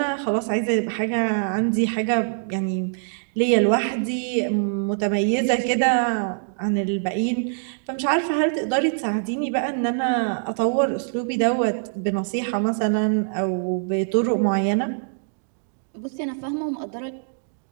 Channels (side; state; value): left; silent; digital silence